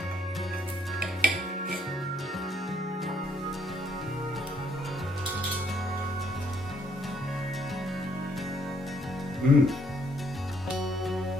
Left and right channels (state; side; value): normal; both; correlation 0.68